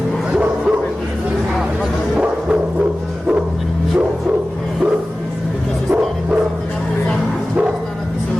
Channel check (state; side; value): normal; both; correlation 0.96